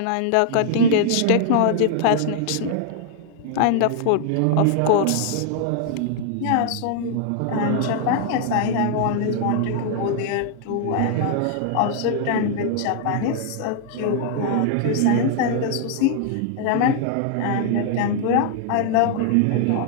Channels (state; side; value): different; both; correlation 0.00